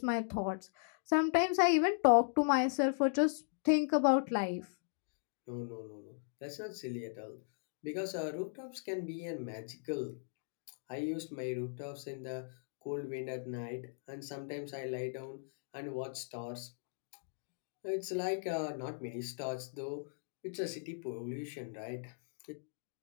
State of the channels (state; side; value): silent; right; digital silence